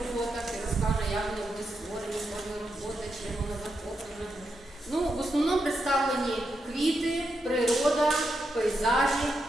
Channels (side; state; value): both; normal; correlation 0.84